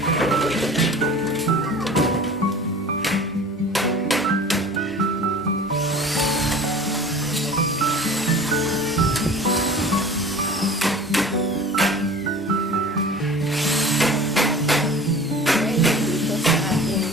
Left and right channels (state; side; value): normal; both; correlation 0.41